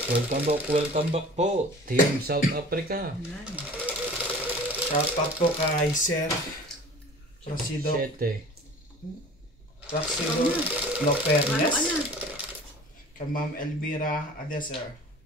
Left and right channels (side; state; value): both; normal; correlation 0.43